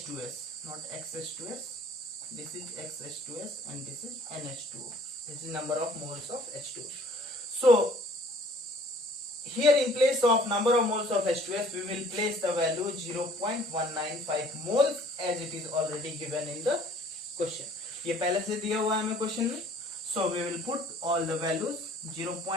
not XH2S. This is XH2S and this is NH2O. This is number of moles of H2O. So here in place of number of moles of H2S, we will place the value 0.195 moles as it is already given in the question. ये पहले से दिया हुआ है हमें question में. So we will put all the values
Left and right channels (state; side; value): normal; both; correlation 0.54